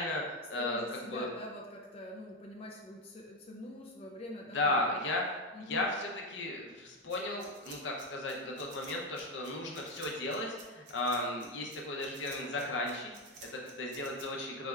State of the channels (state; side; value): normal; both; correlation 0.10